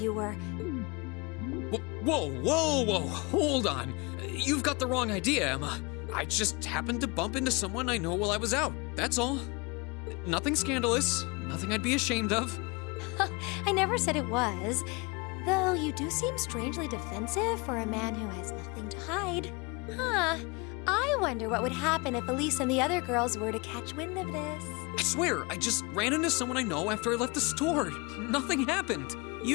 were... Whoa, hold on. You've got the wrong idea, Emma. I just happened to bump into someone I know while I was out, that's all. Nothing scandalous, nothing I'd be ashamed of. I never said it was. Though you do seem strangely defensive for a man who has nothing to hide. Huh. I wonder what would happen if Elise and the other girls were to catch wind of this. I swear, I just ran into someone I know after I left the store. Nothing happened.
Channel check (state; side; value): quieter; right; 27.8 dB